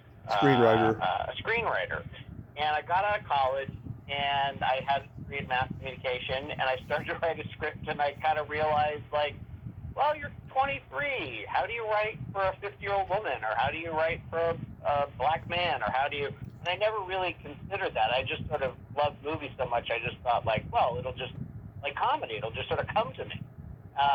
Screenwriter. a screenwriter. And I got out of college and I had a degree in mass communication, and I started to write a script, and I kind of realized, like, well, you're 23. How do you write for a 50-year-old woman? Or how do you write for a black man? Or how do you... And I never really considered that. I just sort of loved movies so much, I just thought, like, well, it'll just... Like comedy, it'll just sort of come to me.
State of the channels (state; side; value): identical; both; correlation 1.00